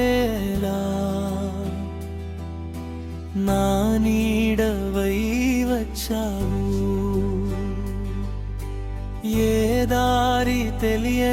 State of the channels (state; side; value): identical; both; correlation 1.00